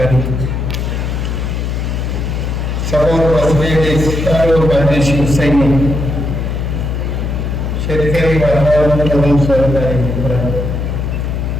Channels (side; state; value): left; noise; hum, 2 dB below the sound